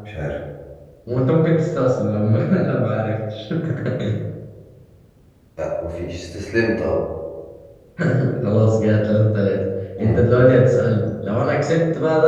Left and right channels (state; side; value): identical; both; correlation 1.00